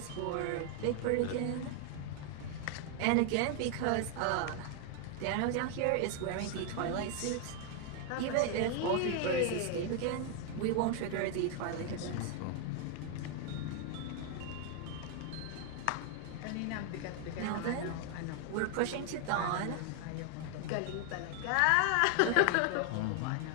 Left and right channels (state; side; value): different; both; correlation 0.00